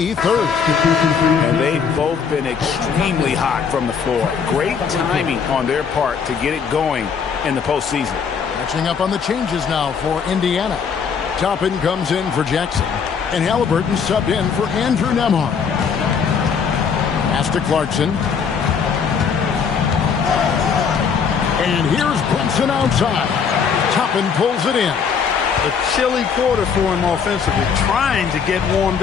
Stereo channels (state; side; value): quieter; right; 6.4 dB